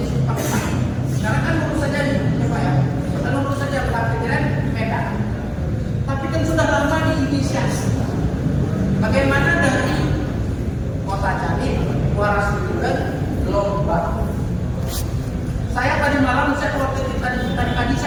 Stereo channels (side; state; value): both; identical; correlation 1.00